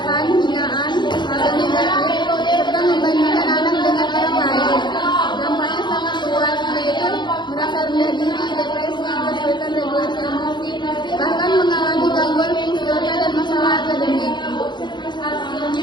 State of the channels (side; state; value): right; late; 0.22 ms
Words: hinaan, atau negatif, serta membandingkan anak dengan orang lain. Dampaknya sangat luas, yaitu merasa rendah diri, depresi, kesulitan regulasi emosi, bahkan mengalami gangguan fungsional dan masalah akademik.